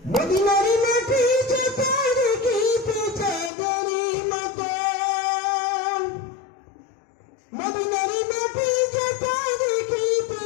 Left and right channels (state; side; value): drops out; right; at 3.5 s